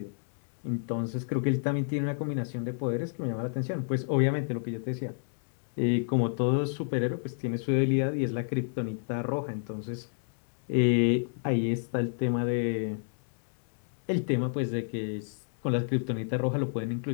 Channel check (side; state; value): right; silent; digital silence